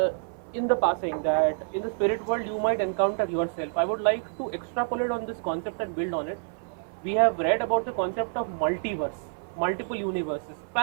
in the passing that in the spirit world you might encounter yourself. I would like to extrapolate on this concept and build on it. We have read about the concept of multiverse, multiple universes,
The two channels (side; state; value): left; silent; 55 dB below the other